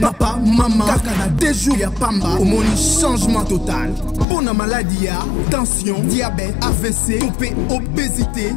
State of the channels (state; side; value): drops out; right; at 4.2 s